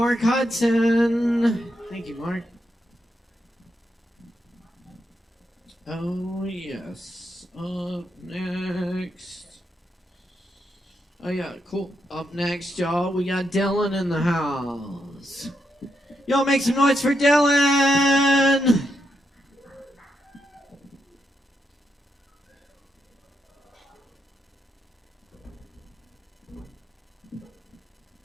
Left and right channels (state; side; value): normal; both; correlation 0.82